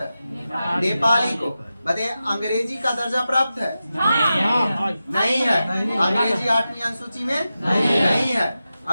नेपाली को। बताइए, अंग्रेजी का दर्जा प्राप्त है? नहीं है। अंग्रेजी 8वीं अनुसूची में नहीं है।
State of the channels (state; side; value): inverted; both; correlation -0.92